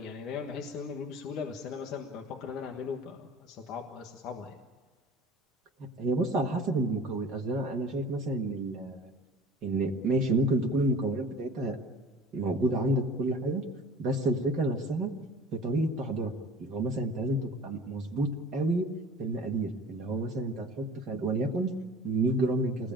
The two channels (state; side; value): normal; both; correlation 0.43